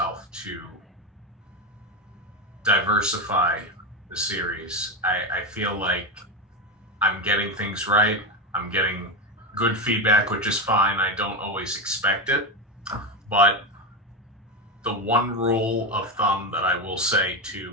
to diversify the series, I feel like I'm getting things right. I'm getting good feedback, which is fine. I don't always expect it, but the one rule of thumb that I will say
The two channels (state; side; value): normal; both; correlation 0.15